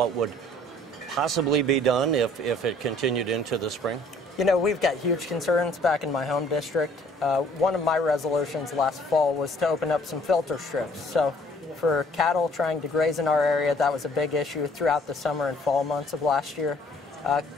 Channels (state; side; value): normal; both; correlation 0.58